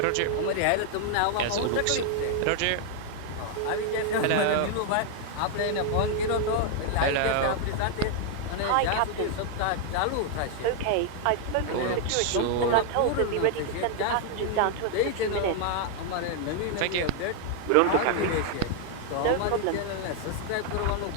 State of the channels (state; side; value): different; both; correlation 0.00